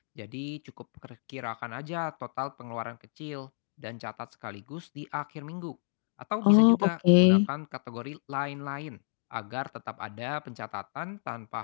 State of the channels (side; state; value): right; silent; 57 dB below the other